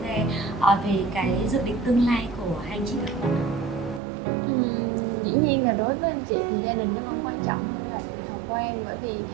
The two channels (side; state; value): left; drops out; at 4.0 s